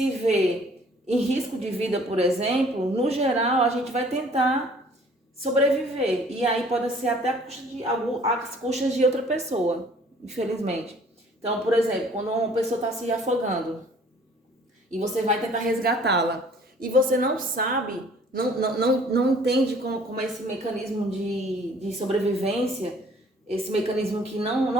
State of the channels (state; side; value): normal; both; correlation 0.55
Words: vê em risco de vida, por exemplo, no geral a gente vai tentar sobreviver, e aí pode ser até às custas de outra pessoa, infelizmente. Então, por exemplo, quando uma pessoa está se afogando e você vai tentar resgatá-la e você não sabe, não entende como é esse mecanismo de sobrevivência, esse mecanismo que